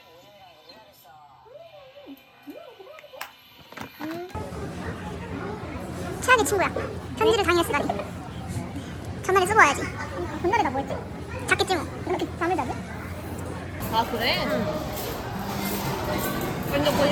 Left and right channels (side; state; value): both; identical; correlation 1.00